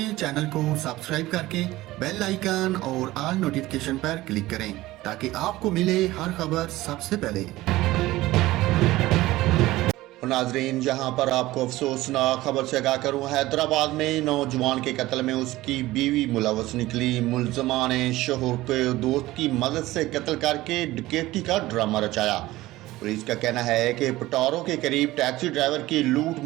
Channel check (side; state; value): left; quieter; 17.5 dB